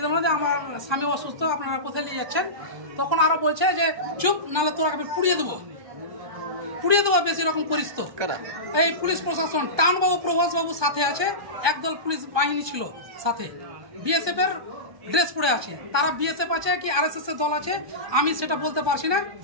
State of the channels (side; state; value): left; late; 1.2 ms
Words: বলে যে আমার স্বামী অসুস্থ, আপনারা কোথায় নিয়ে যাচ্ছেন। তখন আরো বলছে যে চুপ, নাহলে তোরা আমি পুড়িয়ে দেবো, বেশি রকম করিস তো। এই পুলিশ প্রশাসন, টাউনবাবু, প্রভাস বাবু সাথে আছে, একদল পুলিশ বাহিনী ছিল সাথে, বিএসএফ এর ড্রেস পরে আছে। তারা বিএসএফ আছে কি আরএসএস এর দল আছে আমি সেটা বলতে পারছি না,